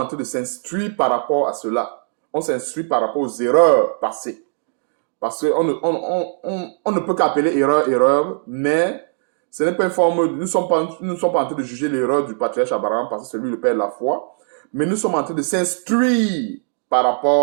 train de s'instruire par rapport à cela. On s'instruit par rapport aux erreurs passées. Parce qu'on ne peut qu'appeler erreur, mais ce n'est pas une forme. Nous ne sommes pas en train de juger l'erreur du patriarche Abraham parce que c'est lui le père de la foi. Mais nous sommes en train de s'instruire par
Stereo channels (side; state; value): left; silent; digital silence